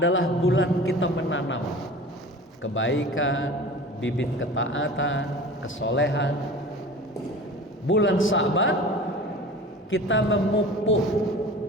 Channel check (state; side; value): normal; both; correlation 0.39